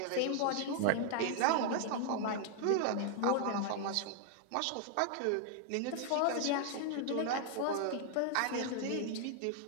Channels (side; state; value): both; different; correlation -0.01